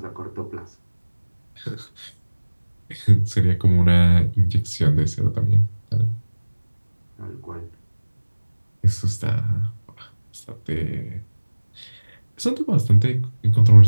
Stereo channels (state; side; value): inverted; both; correlation -1.00